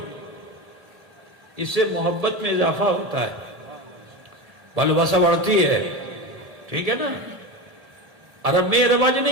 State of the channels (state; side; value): late; left; 1.7 ms